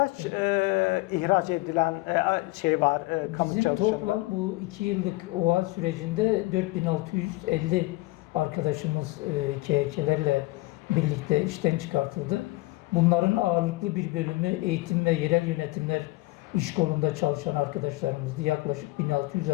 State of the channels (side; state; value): right; quieter; 21.2 dB